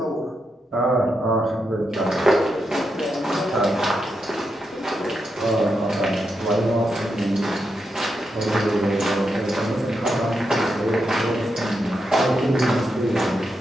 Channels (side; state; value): both; normal; correlation 0.85